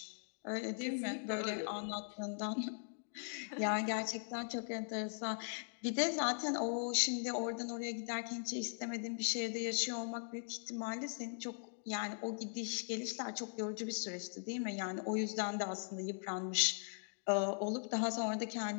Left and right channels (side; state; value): right; silent; digital silence